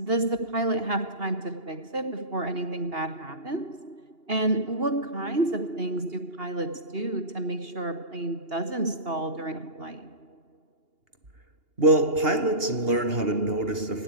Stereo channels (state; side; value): late; left; 2.8 ms